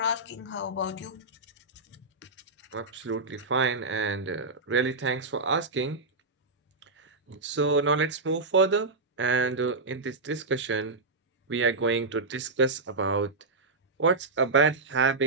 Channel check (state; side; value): quieter; left; 3.5 dB